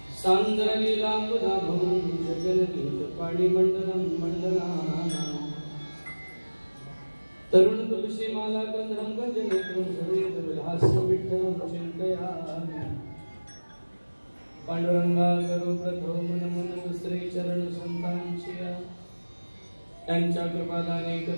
सांद्रलीलांबुधाभं जगन्नीत पाणिमण्डलं मण्डलानां तरुण तुलसी माला गंधर्व गंजनेत्रं सवेद विलास्य विठ्ठलं चिन्तयामि पांडुरंगा करो प्रथम नमन दुसरे चरण संतांचिया त्यांच्या कृपादाने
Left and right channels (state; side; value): inverted; both; correlation -1.00